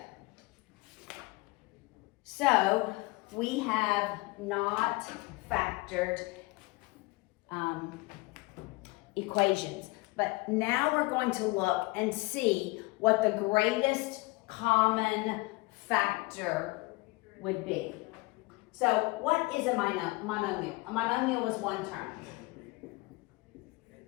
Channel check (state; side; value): quieter; right; 23.9 dB